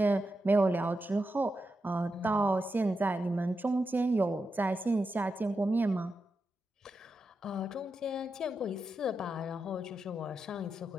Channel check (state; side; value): normal; both; correlation 0.87